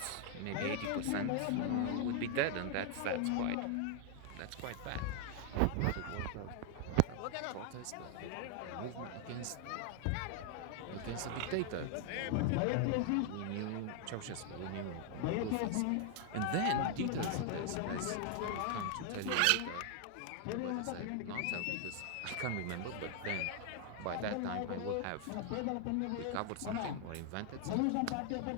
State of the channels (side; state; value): both; different; correlation 0.00